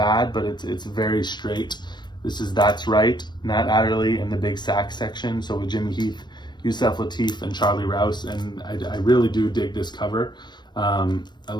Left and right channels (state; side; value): late; right; 0.22 ms